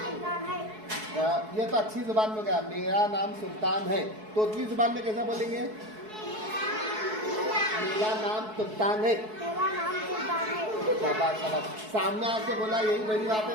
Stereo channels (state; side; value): late; left; 4.6 ms